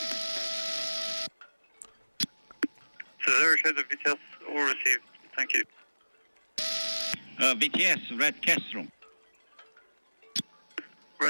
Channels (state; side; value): inverted; both; correlation -1.00